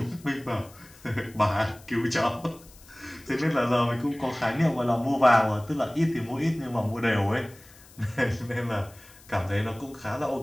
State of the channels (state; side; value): noise; left; hiss, 24 dB below the sound